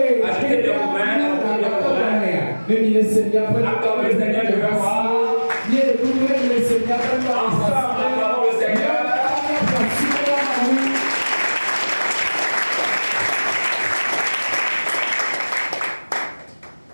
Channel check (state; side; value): inverted; both; correlation -1.00